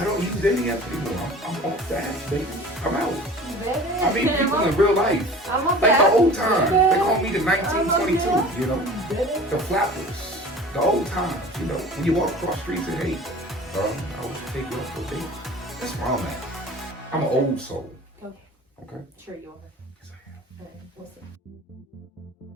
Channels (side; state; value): both; normal; correlation 0.42